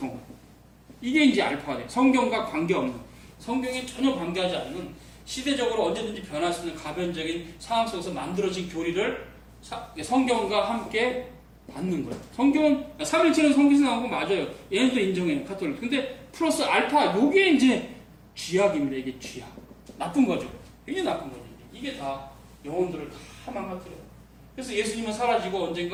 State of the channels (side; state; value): both; identical; correlation 1.00